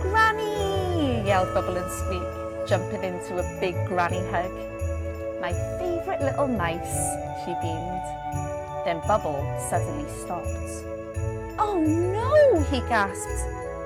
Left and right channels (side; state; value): both; identical; correlation 1.00